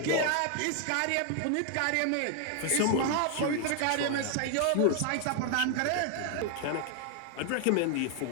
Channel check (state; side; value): different; both; correlation 0.00